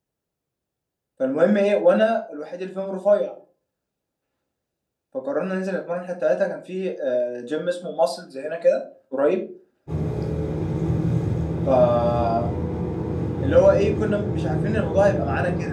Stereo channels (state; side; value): identical; both; correlation 1.00